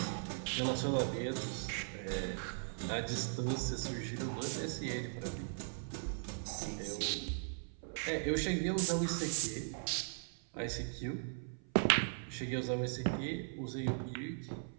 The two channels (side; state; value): left; silent; 52 dB below the other